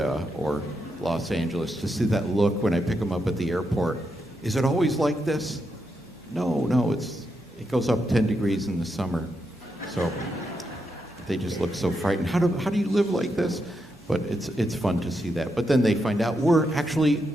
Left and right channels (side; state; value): both; normal; correlation 0.83